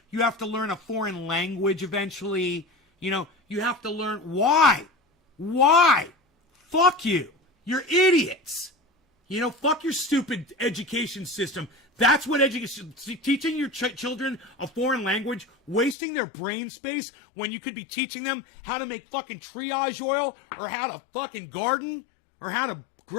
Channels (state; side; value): drops out; right; at 16.0 s